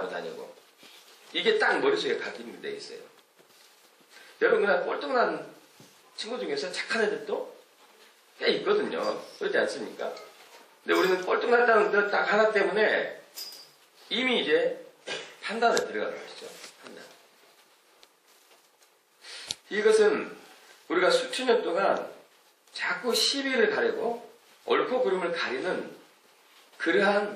다니고 이게 딱 머릿속에 각인이 돼 있어요. 여러분 그냥 꼴등 난 친구 중에서 착한 애들도 꽤 있거든요. 그렇지 않습니까? 근데 우리는 꼴등 났다는 것 딱 하나 때문에 이미 이제 판단에 들어가는 것이죠. 판단. 이것은 우리가 수천 년 동안 자꾸 시비를 가리고 옳고 그름을 가리는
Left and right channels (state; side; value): identical; both; correlation 1.00